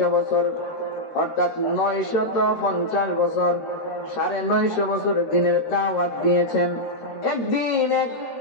বছর, অর্থাৎ 950 বছর, 950 বছর দিনের দাওয়াত দিয়েছেন। একদিন এক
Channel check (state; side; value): late; right; 13 ms